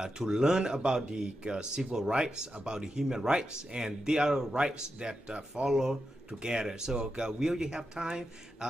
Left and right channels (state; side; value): normal; both; correlation 0.88